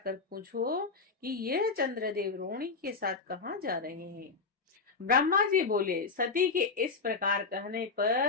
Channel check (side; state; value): right; quieter; 4.5 dB